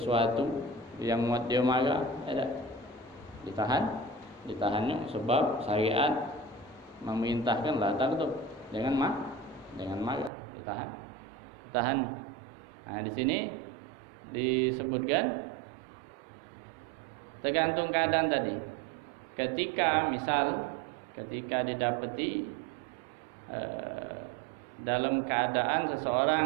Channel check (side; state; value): left; drops out; at 10.3 s